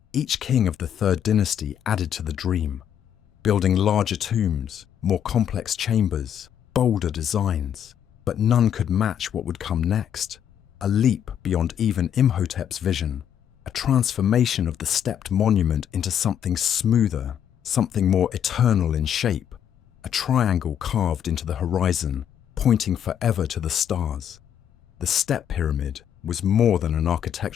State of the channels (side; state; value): right; quieter; 9.3 dB